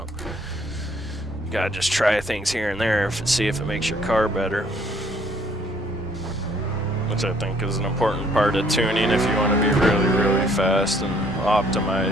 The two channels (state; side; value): normal; both; correlation 0.63